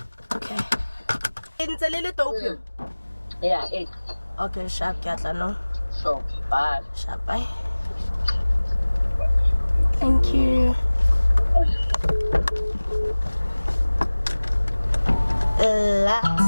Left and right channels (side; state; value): both; inverted; correlation -1.00